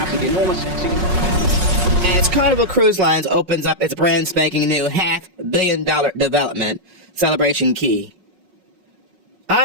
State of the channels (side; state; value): left; late; 5.4 ms